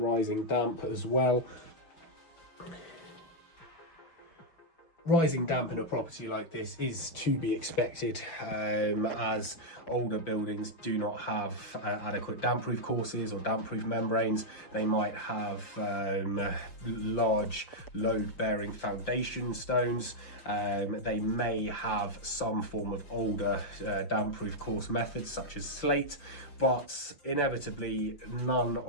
rising damp as well. Rising damp in a property like this is to be expected, as older buildings do not have adequate damp-proof courses or damp-proof membranes. They might have large load-bearing foundation stones. They may have some form of older damp-proof course methods such as slate, but inevitably none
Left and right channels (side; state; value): right; late; 5.8 ms